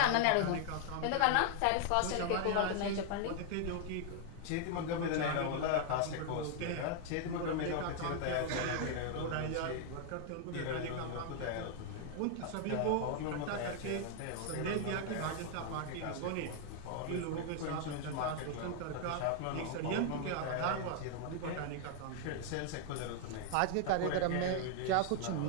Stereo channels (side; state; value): both; different; correlation 0.00